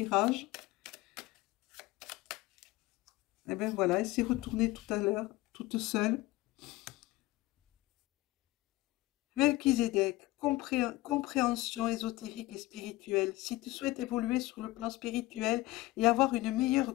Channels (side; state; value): right; quieter; 18.9 dB